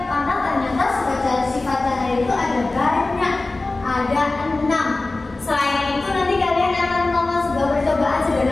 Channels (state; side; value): quieter; right; 3.2 dB